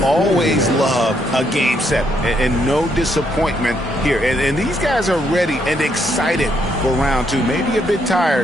always love a Game 7, and no disappointment here. And these guys are ready and excited for round two. Maybe a bit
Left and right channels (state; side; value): normal; both; correlation 0.74